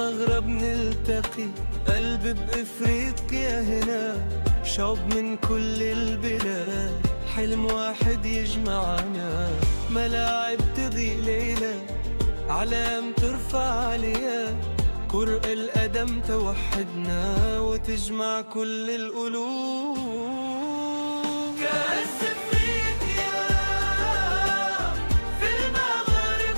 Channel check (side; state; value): both; inverted; correlation -1.00